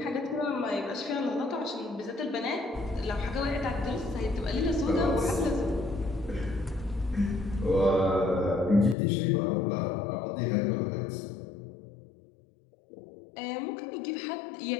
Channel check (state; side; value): drops out; right; at 9.0 s